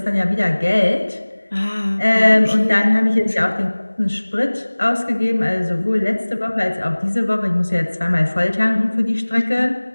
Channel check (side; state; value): both; inverted; correlation -1.00